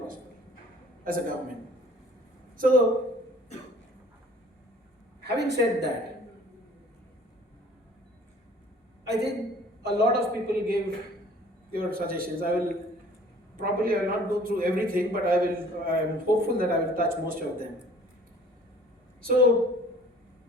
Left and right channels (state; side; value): normal; both; correlation 0.52